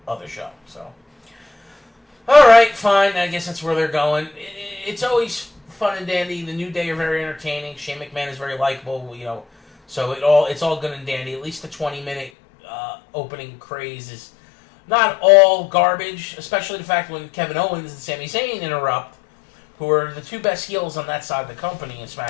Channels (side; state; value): right; drops out; at 12.3 s